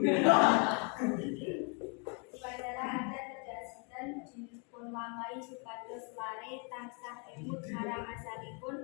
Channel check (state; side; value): quieter; right; 36.5 dB